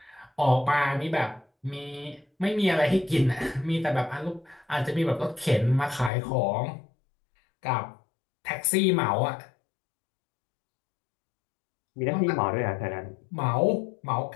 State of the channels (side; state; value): right; drops out; at 6.1 s